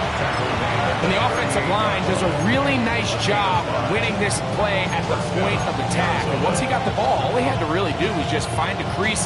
And the offensive line does a really nice job winning this play at the point of attack. And once he got the ball, all he had to really do was just find a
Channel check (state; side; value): identical; both; correlation 1.00